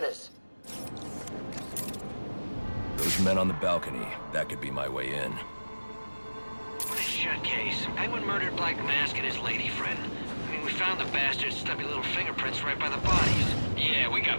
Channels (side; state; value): both; inverted; correlation -1.00